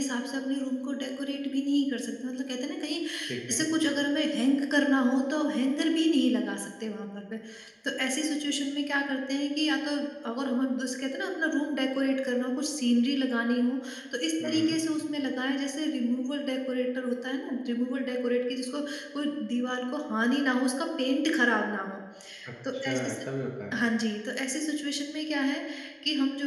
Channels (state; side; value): identical; both; correlation 1.00